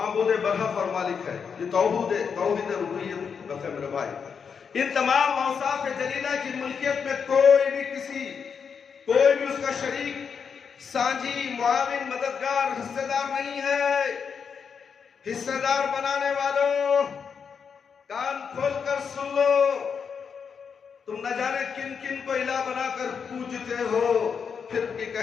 برحق اور مالک ہے. یہ توحید ربوبیت ہے میرے بھائی. ان تمام اوصاف جلیلہ کی ملکیت میں کوئی بھی اس کا شریک، سانجی، معاون، مددگار، حصہ دار نہیں ہے. حصہ دار بنانے والوں کان کھول کر سن لو، تم نہ جانے کن کن کو الہ بنا کر پوجتے ہو، پھر بھی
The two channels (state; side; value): quieter; right; 6.4 dB